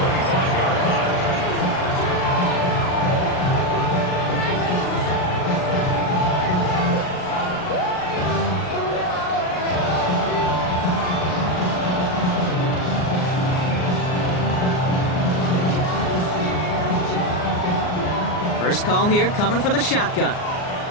First call here coming from the shotgun.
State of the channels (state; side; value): late; right; 39 ms